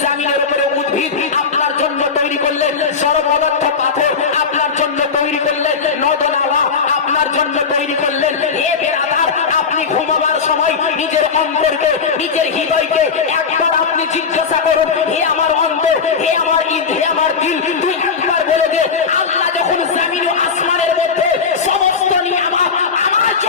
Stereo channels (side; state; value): right; quieter; 5.5 dB